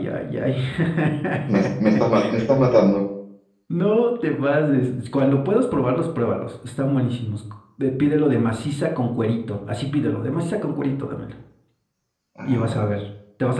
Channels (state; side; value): identical; both; correlation 1.00